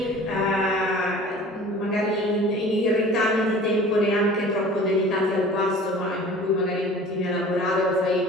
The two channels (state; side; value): normal; both; correlation 0.44